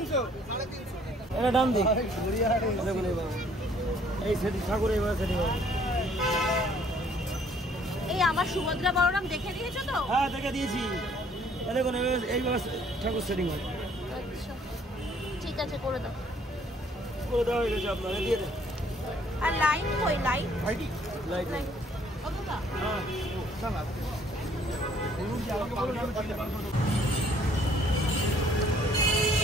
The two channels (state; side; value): normal; both; correlation 0.61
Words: এটা দাম দিই। এই সেটি ঠাকুর এবার সেটি। এই আমার সুভদ্রা বলরাম দেখে দিয়েছো তো? হ্যাঁ দেখে দিয়েছি। দেখুন এইভাবে ঠাকুর সেটিং হয়। আচ্ছা ঠিক আছে, করে দাও। করে দেওয়া হয়ে গেছে আপনার, দিয়ে দেন। আর লাইট কই? লাইট লাইট কতটা? হ্যাঁ